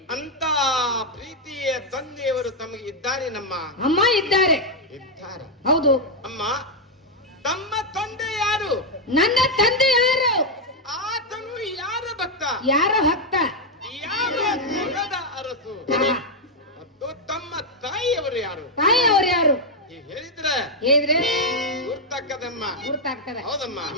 ಅಂತ ಪ್ರೀತಿಯ ತಂದೆಯವರು ತಮಗೆ ಇದ್ದಾರೆ. ನಮ್ಮ ಅಮ್ಮ ಇದ್ದಾರೆ. ಹೌದು ಅಮ್ಮ. ತಮ್ಮ ತಂದೆ ಯಾರು? ನನ್ನ ತಂದೆ ಯಾರು? ಆತನು ಯಾರ ಭಕ್ತ? ಯಾರ ಭಕ್ತ? ಯಾವ ಕುಲದ ಅರಸು? ಮತ್ತು ತಮ್ಮ ತಾಯಿಯವರು ಯಾರು? ತಾಯಿಯವರು ಯಾರು ಹೇಳಿದ್ರೆ ಗುರ್ತಾಗ್ತದಮ್ಮ. ಗುರ್ತಾಗ್ತದೆ. ಹೌದಮ್ಮ.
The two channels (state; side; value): normal; both; correlation 0.00